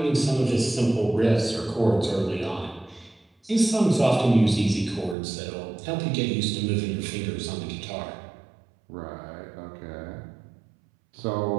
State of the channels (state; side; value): drops out; left; at 5.2 s